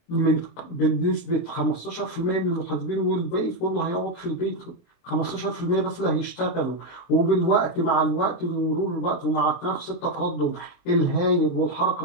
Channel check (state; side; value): late; right; 23 ms